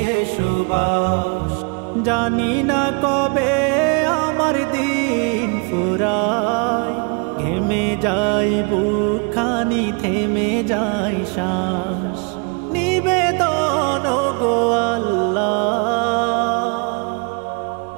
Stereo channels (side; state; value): left; quieter; 34.5 dB